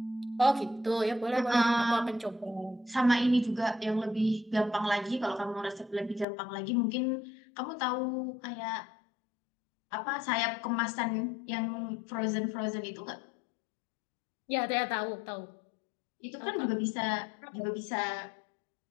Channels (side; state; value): right; drops out; at 6.2 s